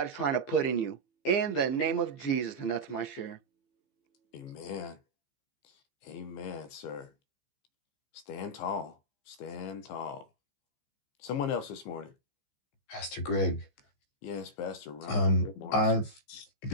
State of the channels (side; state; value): right; late; 15 ms